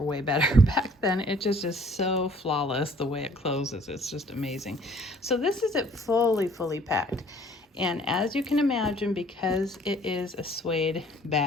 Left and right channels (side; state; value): both; normal; correlation 0.56